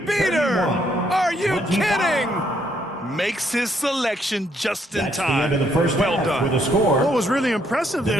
31. Are you 25. kidding? Makes his selection just in That's the time. end of the first Well half done. with a score. What was really impressive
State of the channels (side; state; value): both; normal; correlation 0.71